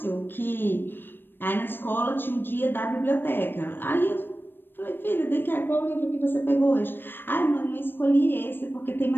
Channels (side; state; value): right; late; 0.097 ms